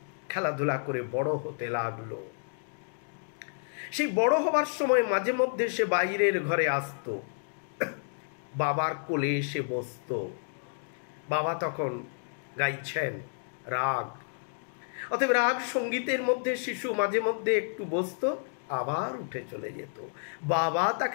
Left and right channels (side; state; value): right; silent; digital silence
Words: খেলাধুলা করে বড় হতে লাগলো। সেই বড় হবার সময় মাঝে মধ্যে সে বাইরের ঘরে আসতো, বাবার কোলে এসে বসতো। বাবা তখন গাইছেন রাগ, অতএব রাগ সঙ্গীতের মধ্যে শিশু মাঝে মধ্যে একটু বসতো, আবার উঠে চলে যেত। বাবা